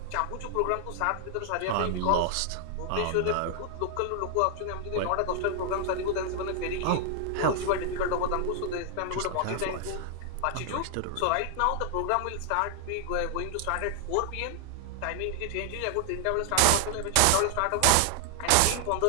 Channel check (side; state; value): both; different; correlation 0.00